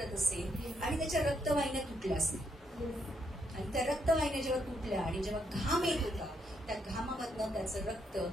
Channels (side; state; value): both; normal; correlation 0.76